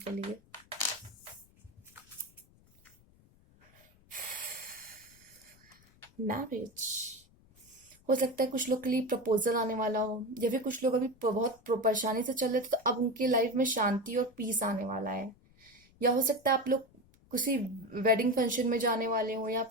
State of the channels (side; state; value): left; noise; rumble, 29 dB below the sound